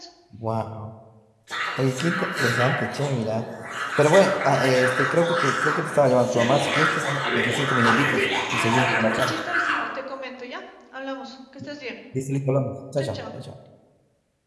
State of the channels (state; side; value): identical; both; correlation 1.00